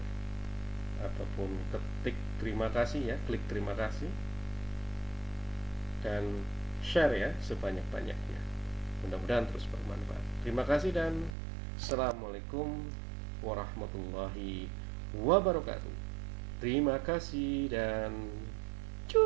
ataupun ketik terima kasih ya, klik terima kasih, dan share ya sebanyak-banyaknya. Mudah-mudahan terus bermanfaat. Terima kasih dan Assalamualaikum warahmatullahi wabarakatuh. Terima kasih dan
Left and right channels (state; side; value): drops out; left; at 11.4 s